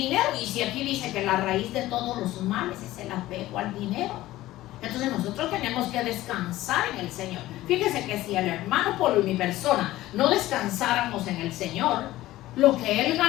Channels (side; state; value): right; quieter; 16.1 dB